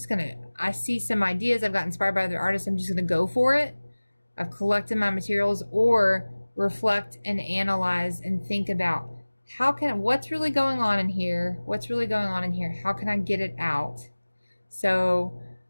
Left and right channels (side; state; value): both; inverted; correlation -1.00